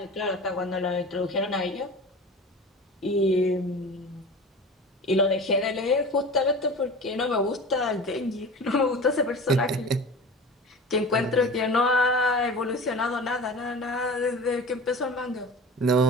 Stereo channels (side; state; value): both; normal; correlation 0.35